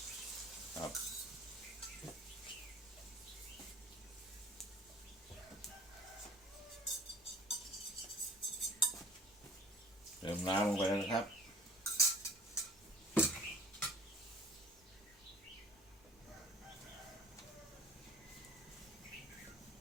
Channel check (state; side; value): normal; both; correlation 0.48